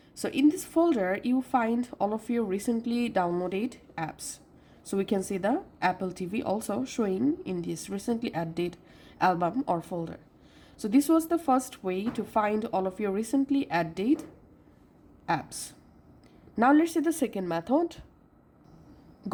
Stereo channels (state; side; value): identical; both; correlation 1.00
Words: So in this folder, you find all of your recently downloaded apps. So we can see the Apple TV also showing in this recently added album or folder. So this was the first way to find all of your recently added apps. Now let's see the second method.